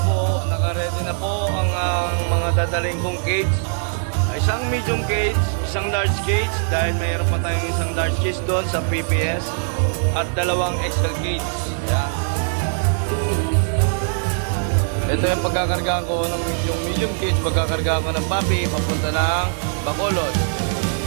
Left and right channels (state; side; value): silent; left; 65 dB below the other